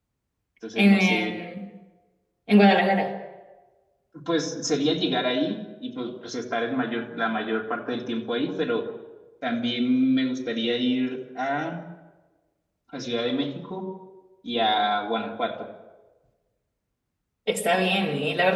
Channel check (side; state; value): both; identical; correlation 1.00